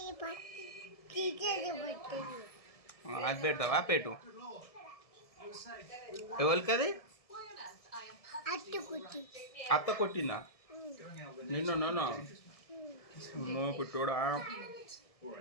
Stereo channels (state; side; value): late; right; 1.7 ms